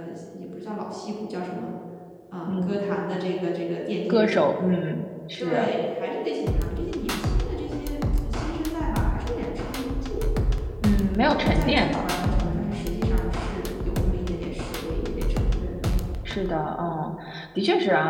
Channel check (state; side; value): identical; both; correlation 1.00